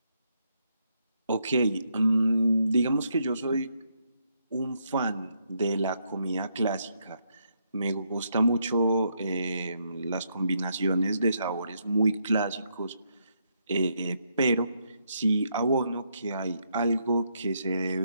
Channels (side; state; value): both; inverted; correlation -0.77